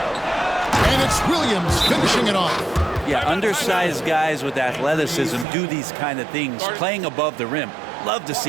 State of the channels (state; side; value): drops out; left; at 5.5 s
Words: And it's Williams finishing it off. Yeah, undersized guys with athleticism do these kind of things, playing above the rim. Love to